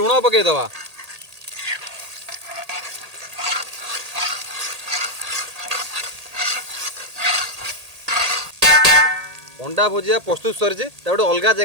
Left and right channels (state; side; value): late; left; 1.8 ms